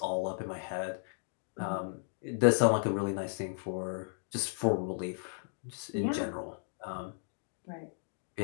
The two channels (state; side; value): silent; right; digital silence